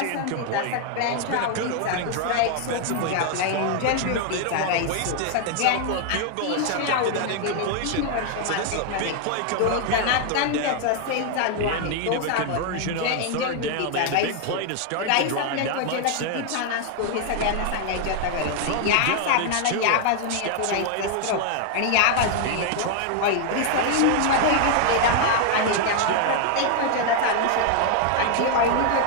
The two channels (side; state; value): both; different; correlation 0.00